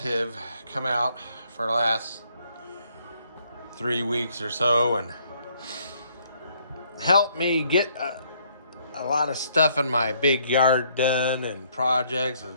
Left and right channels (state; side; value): inverted; both; correlation -0.67